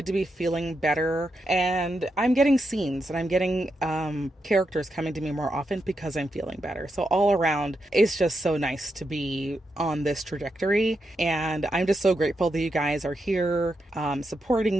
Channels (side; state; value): both; normal; correlation 0.84